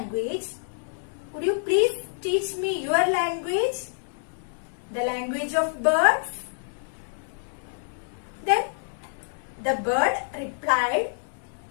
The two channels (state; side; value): silent; right; digital silence